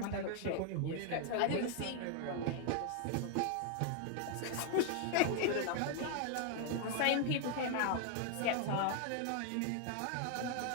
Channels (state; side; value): different; both; correlation 0.00